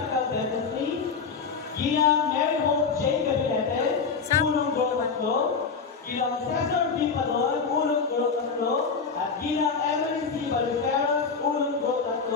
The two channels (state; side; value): quieter; right; 5.3 dB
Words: Dentistry, Ginang Mary Hope J. Gabinete, Unong Gulo 3, Ginang Cesar B. Padon, Unong Gulo 3, at Ginang Emily C. Baliferas, Unong Gulo